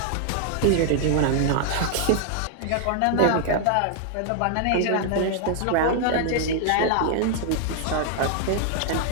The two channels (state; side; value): different; both; correlation 0.00